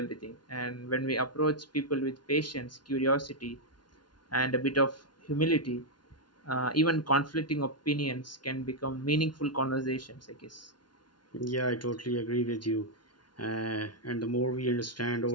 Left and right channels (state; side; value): late; right; 0.70 ms